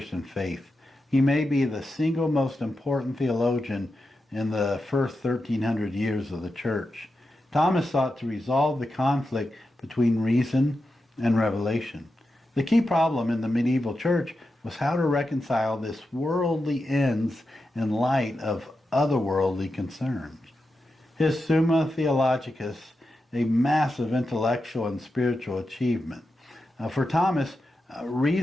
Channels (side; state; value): both; normal; correlation 0.89